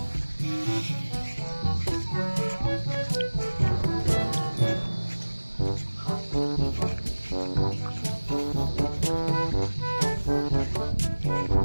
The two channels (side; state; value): both; inverted; correlation -1.00